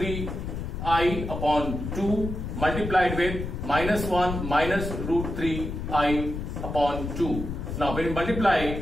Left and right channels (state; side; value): noise; left; rumble, 5 dB below the sound